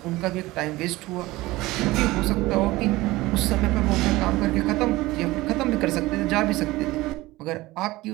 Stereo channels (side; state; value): left; quieter; 19.3 dB